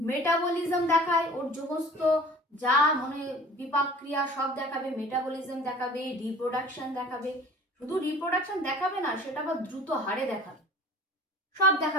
মেটাবলিজম দেখায়, ওর সমস্ত যা মানে বিপাক ক্রিয়া সব দেখাবে, মেটাবলিজম দেখাবে, রিপ্রোডাকশন দেখাবে। শুধু রিপ্রোডাকশন দেখাবে না, সেটা আবার দ্রুত হারে দেখাবে, সব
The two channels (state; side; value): normal; both; correlation 0.45